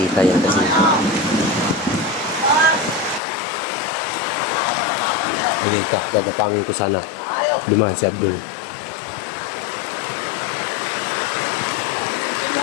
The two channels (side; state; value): right; drops out; at 3.2 s